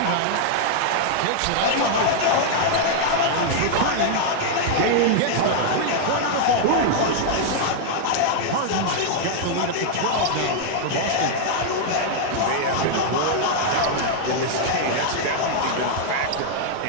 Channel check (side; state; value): both; different; correlation -0.01